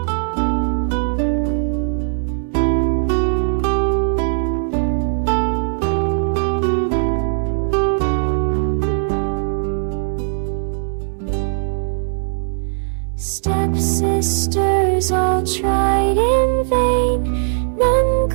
Stepsisters all tried in vain, none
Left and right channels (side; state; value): left; silent; digital silence